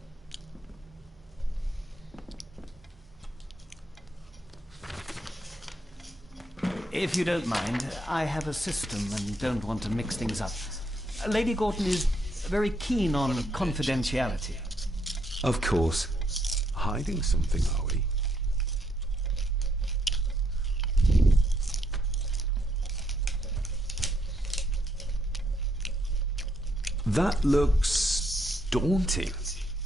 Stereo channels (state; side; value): normal; both; correlation 0.75